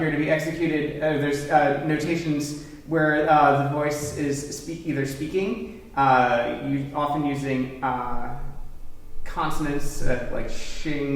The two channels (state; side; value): identical; both; correlation 1.00